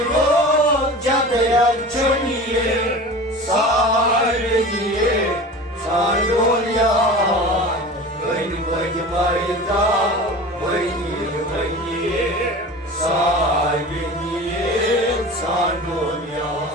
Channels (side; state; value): both; normal; correlation 0.35